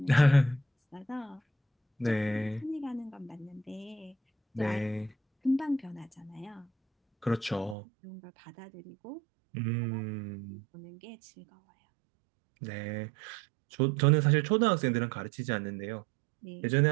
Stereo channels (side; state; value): left; drops out; at 7.8 s